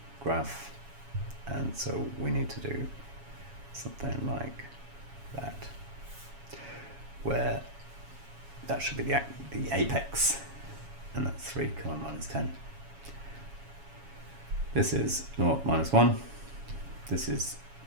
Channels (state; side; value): late; left; 7.2 ms